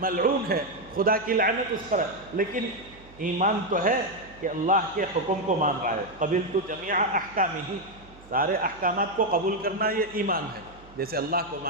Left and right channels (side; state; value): right; noise; hum, 23 dB below the sound